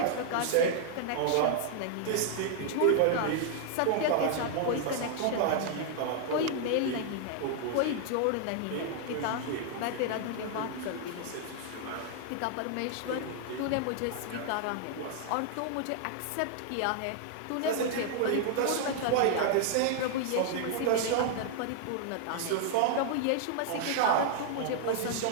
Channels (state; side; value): different; both; correlation 0.00